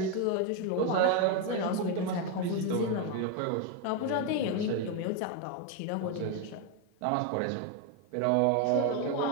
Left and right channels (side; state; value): both; different; correlation 0.02